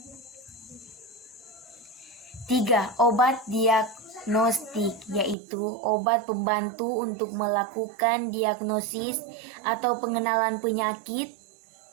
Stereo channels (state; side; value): drops out; left; at 5.4 s